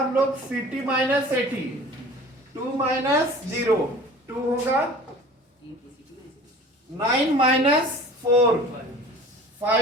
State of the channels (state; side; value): normal; both; correlation 0.43